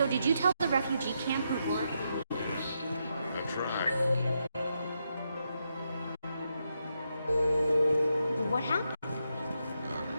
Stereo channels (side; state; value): both; inverted; correlation -0.82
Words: did you tell the refugee camp who were to leave? That's right. What happened?